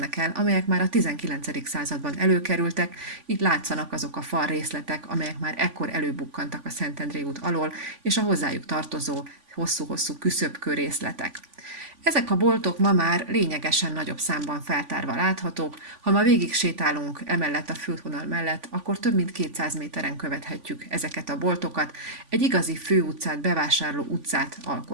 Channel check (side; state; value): left; late; 3.5 ms